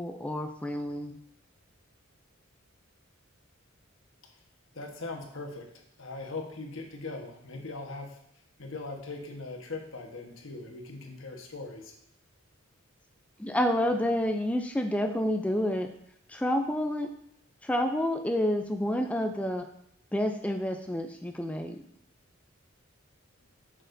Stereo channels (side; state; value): both; normal; correlation 0.77